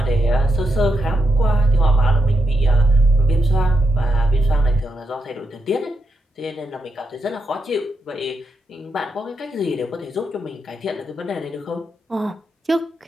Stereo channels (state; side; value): normal; both; correlation 0.84